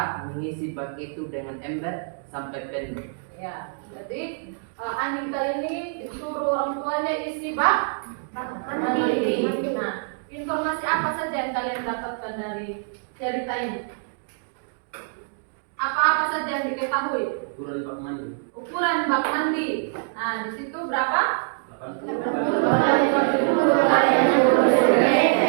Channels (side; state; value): left; silent; digital silence